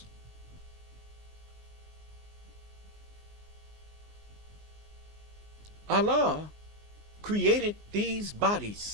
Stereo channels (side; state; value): left; late; 19 ms